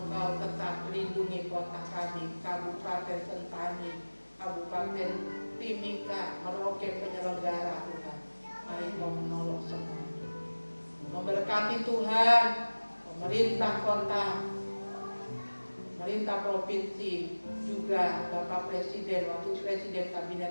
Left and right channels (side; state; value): both; inverted; correlation -1.00